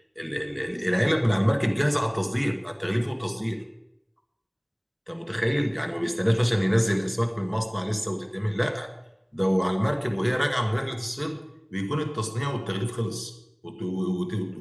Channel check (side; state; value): both; identical; correlation 1.00